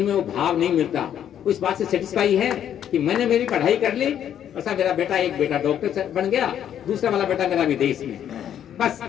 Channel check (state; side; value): quieter; right; 9.9 dB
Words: वो भाव नहीं मिलता। वो इस बात से सेटिस्फाई है कि मैंने मेरी पढ़ाई कर ली, ऐसा मेरा बेटा, एक बेटा डॉक्टर बन गया, दूसरा वाला बेटा मेरा विदेश में, बस